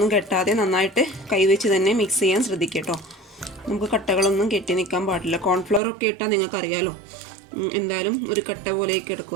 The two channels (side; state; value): left; drops out; at 5.8 s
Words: കെട്ടാതെ നന്നായിട്ട് കൈ വെച്ച് തന്നെ മിക്സ് ചെയ്യാൻ ശ്രദ്ധിക്കുക കേട്ടോ. നമുക്ക് കട്ടകളൊന്നും കെട്ടി നിൽക്കാൻ പാടില്ല. കോൺഫ്ലവർ ഒക്കെ ഇട്ടാൽ നിങ്ങൾക്കറിയാലോ എന്തായാലും ഒരു കട്ട പോലെയൊക്കെ എടുക്കും.